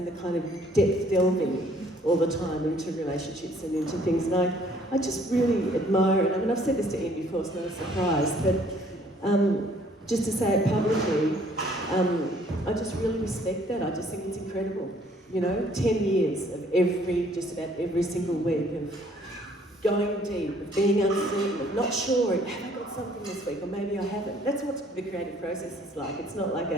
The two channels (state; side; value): normal; both; correlation 0.60